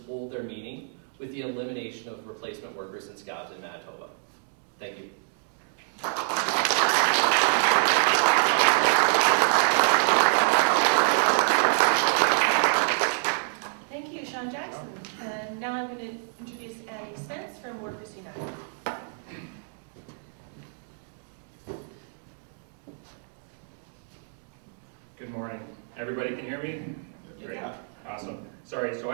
hold their meaning with the elimination of replacement workers and scabs in Manitoba. Thank you. Thank you, Sean Jackson. And now I'm going to introduce Andy Spence from Workers United. Good morning. Everybody can hear me? Great. Awesome. Sorry, so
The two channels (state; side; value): silent; left; digital silence